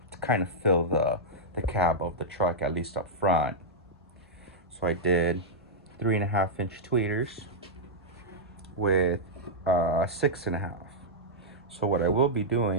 to kind of fill the cab of the truck, at least up front. So I did 3.5-inch tweeters with 6.5. So what I will be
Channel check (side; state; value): both; normal; correlation -0.08